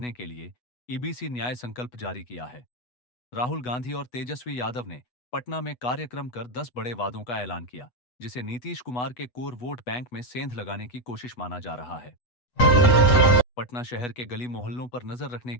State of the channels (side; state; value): right; late; 8.1 ms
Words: के लिए ईबीसी न्याय संकल्प जारी किया है। राहुल गांधी और तेजस्वी यादव ने पटना में कार्यक्रम कर 10 बड़े वादों का ऐलान किया, जिसे नीतीश कुमार के कोर वोट बैंक में सेंध लगाने की कोशिश माना जा रहा है। पटना शहर के गली मोहल्लों पर नजर रखने